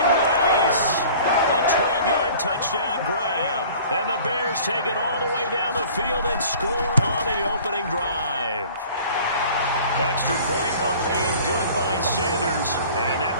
Rice! A 12-yard touchdown grab. And the Bears take it all the way down the field and score on the opening drive. Extra point up and good by Sanders, and that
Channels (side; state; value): both; inverted; correlation -0.47